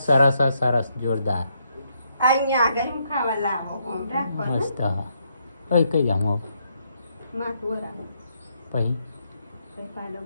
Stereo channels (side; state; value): both; inverted; correlation -0.76